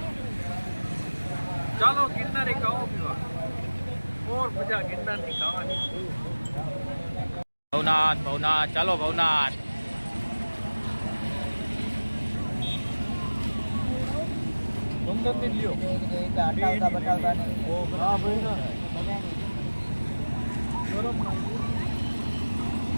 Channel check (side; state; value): both; inverted; correlation -1.00